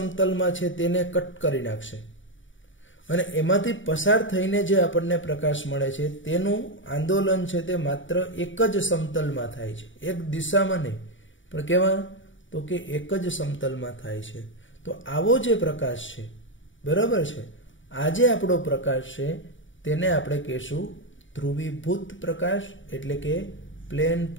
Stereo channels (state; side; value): late; right; 0.56 ms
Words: છે તેને કટ કરી નાખશે, અને એમાંથી પસાર થઈને જે આપણને પ્રકાશ મળે છે તેનું આંદોલન છે તે માત્ર એક જ સમતલમાં થાય છે, એક દિશામાં નહીં, પણ કેવા? તો કે એક જ સમતલમાં થાય છે. તો આવો જે પ્રકાશ છે, બરાબર છે, આ જે આપણો પ્રકાશ છે તેને આપણે કહેશું ધ્રુવીભૂત પ્રકાશ, એટલે કે પ્લેન